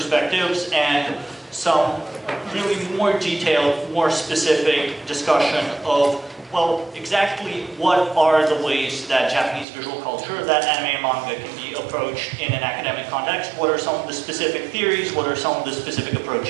and some really more detailed, more specific discussion of, well, exactly what are the ways that Japanese visual culture, that anime and manga can be approached in an academic context? What are some of the specific theories? What are some of the specific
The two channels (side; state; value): left; drops out; at 9.7 s